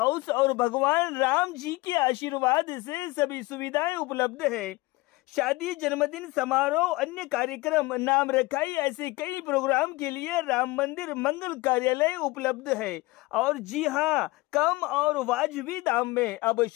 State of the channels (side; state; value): right; quieter; 21.7 dB